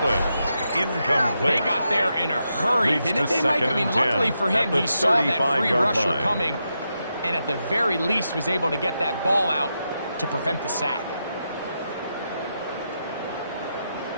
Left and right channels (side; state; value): both; inverted; correlation -0.85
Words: incomplete. They got there in a hurry, Leads didn't to they, Mike? I mean, 2nd and 10 luckily for him, at the he saw that free 35-yard rusher line. coming, and at the very least was able to get that ball out to prevent the sack.